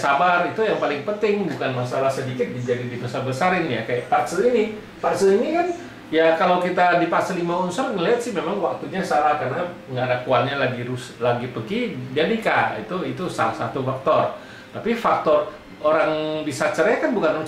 itu yang paling penting. Bukan masalah sedikit jadi dibesar-besarin ya. Kayak Pak Aceh ini kan ya, kalau kita di Pak Aceh 5 unsur ngelihat sih memang waktunya salah, karena nggak ada kuannya lagi pergi, dia nikah. Itu salah satu faktor. Tapi faktor orang bisa cerai kan bukan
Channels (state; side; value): identical; both; correlation 1.00